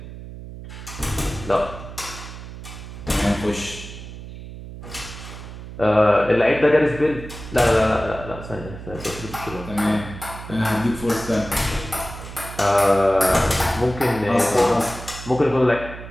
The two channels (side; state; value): right; noise; hum, 12 dB below the sound